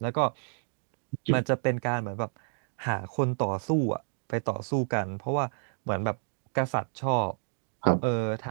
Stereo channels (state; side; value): silent; left; digital silence